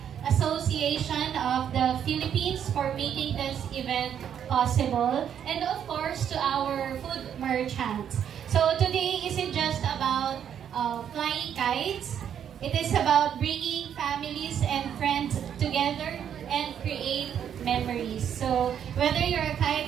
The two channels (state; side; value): quieter; left; 9.0 dB